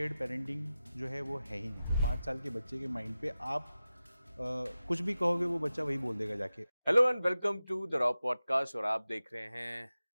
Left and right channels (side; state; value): both; inverted; correlation -0.94